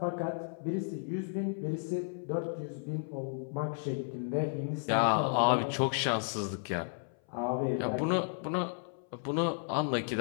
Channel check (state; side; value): silent; right; 56 dB below the other